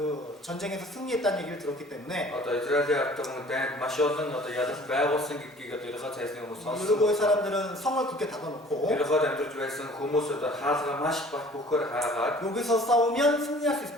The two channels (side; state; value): both; normal; correlation 0.50